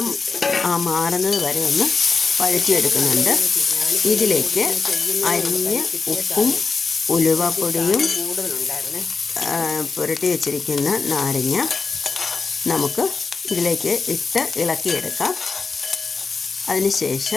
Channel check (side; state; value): right; quieter; 4.6 dB